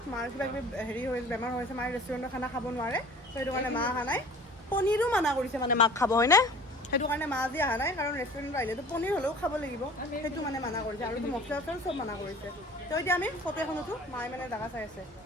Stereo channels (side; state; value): both; normal; correlation 0.45